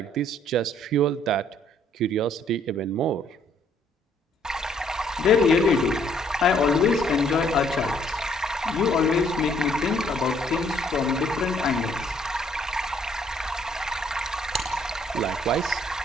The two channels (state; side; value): normal; both; correlation 0.65